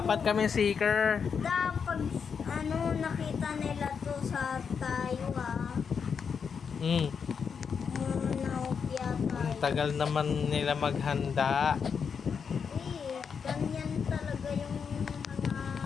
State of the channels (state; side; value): quieter; right; 6.4 dB